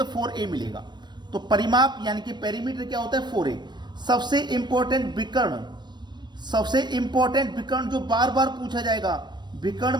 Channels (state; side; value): late; left; 0.21 ms